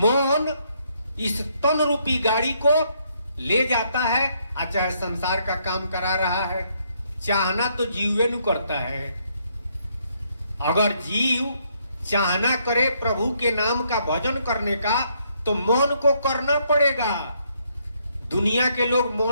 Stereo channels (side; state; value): both; inverted; correlation -0.72